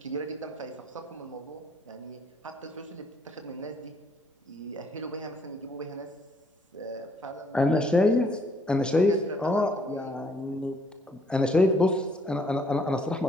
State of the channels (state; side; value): normal; both; correlation 0.66